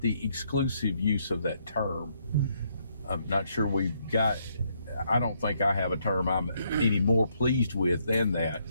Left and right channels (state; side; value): inverted; both; correlation -0.73